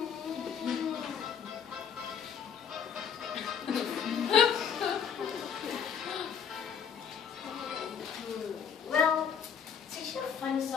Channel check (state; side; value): quieter; right; 7.4 dB